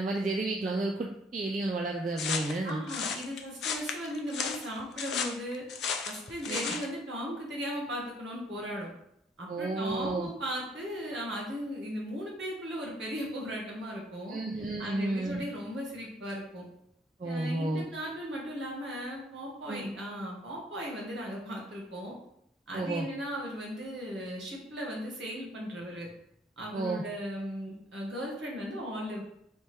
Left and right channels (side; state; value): both; normal; correlation 0.63